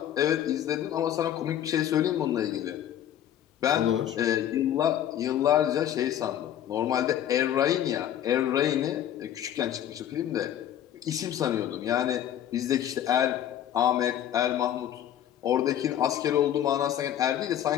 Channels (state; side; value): quieter; right; 10.9 dB